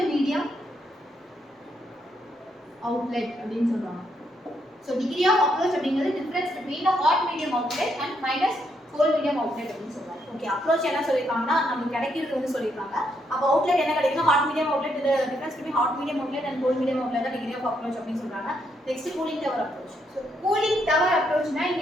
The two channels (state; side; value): normal; both; correlation 0.76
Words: medium outlet அப்படின்னு சொல்றாங்க. ஸோ டிகிரி ஆஃப் அப்ரோச் அப்படிங்கிறது difference between the hot medium outlet and minus cold medium outlet அப்படின்னு சொல்றாங்க. ஓகே, அப்ரோச் என்ன சொல்லியிருக்காங்கன்னா நமக்கு கிடைக்கிறது வந்து சொல்லியிருக்காங்க. அப்போ அவுட்லெட் என்ன கிடைக்குன்னா ஹாட் மீடியம் அவுட்லெட். இது difference between hot medium outlet and cold medium outlet தான் டிகிரி ஆஃப் அப்ரோச் அப்படின்னு சொல்றாங்க. Next cooling tower approach. So cooling tower அப்ரோச்னா